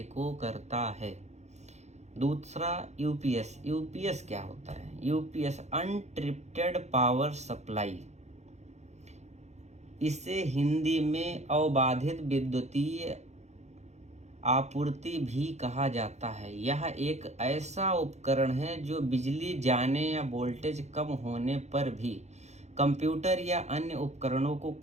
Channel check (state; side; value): late; left; 0.33 ms